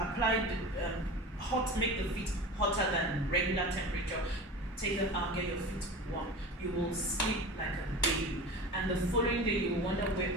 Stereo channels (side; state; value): both; normal; correlation 0.33